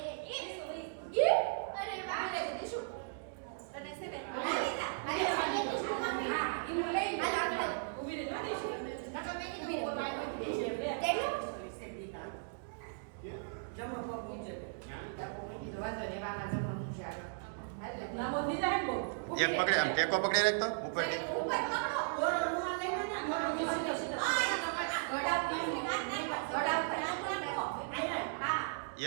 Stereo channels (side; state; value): left; silent; digital silence